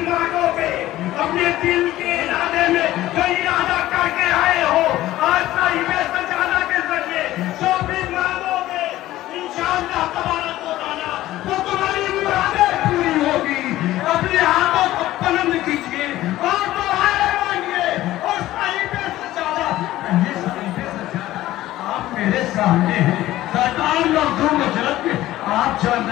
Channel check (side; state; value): right; quieter; 15.3 dB